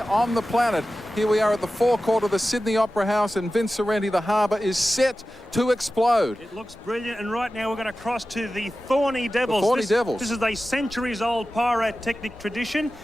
the planet. Here we are at the forecourt of the Sydney Opera House, and Vince Sorrenti, the harbour, is set to explode. It looks brilliant, and right now we're going to cross to the Thorny Devils. The Thorny Devils. This is a centuries-old pyrotechnic tradition.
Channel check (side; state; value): both; normal; correlation 0.95